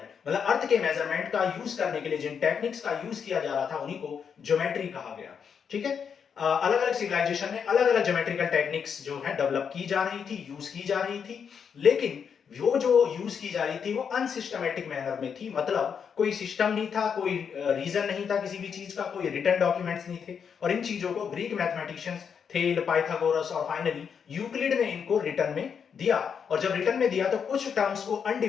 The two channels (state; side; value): quieter; right; 6.9 dB